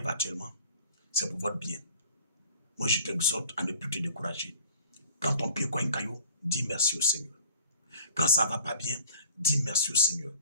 actuellement, c'est pour votre bien. Moi, je t'exhorte à ne plus te décourager. Quand ton pied cogne un caillou, dis merci au Seigneur. Quand ça ne va pas bien, dis merci au Seigneur.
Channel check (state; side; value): inverted; both; correlation -0.47